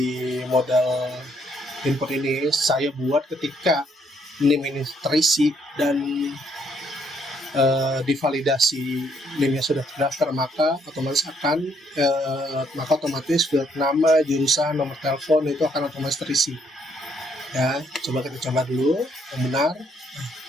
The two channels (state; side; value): normal; both; correlation 0.70